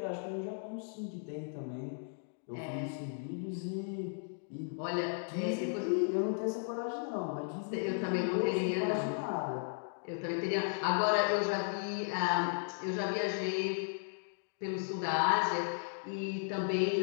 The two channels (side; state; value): right; silent; digital silence